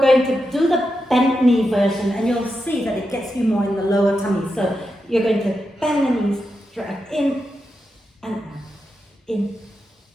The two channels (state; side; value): normal; both; correlation 0.87